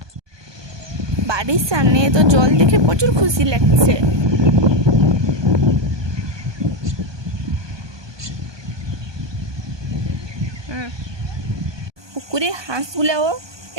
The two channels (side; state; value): left; late; 1.2 ms